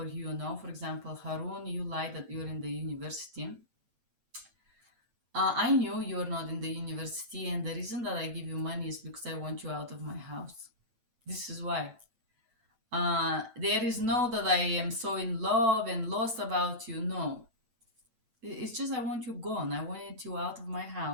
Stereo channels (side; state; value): left; late; 9.0 ms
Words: you, know. For example, Harun, you lie that you're in the university. I knew you're not in the university, and the reason that I give you money is because I want you out of my house. This is why. There is no that I am so in love and lost about you. No. It's just I want you gone. I wanted you out of my